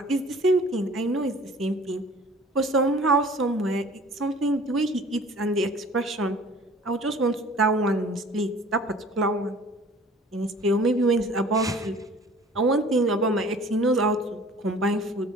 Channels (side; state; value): both; normal; correlation 0.48